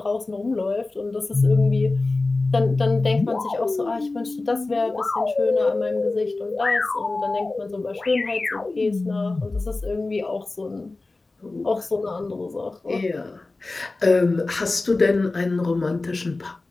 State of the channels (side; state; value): right; quieter; 3.3 dB